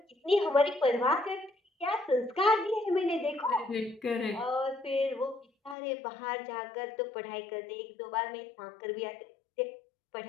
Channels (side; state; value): right; drops out; at 5.8 s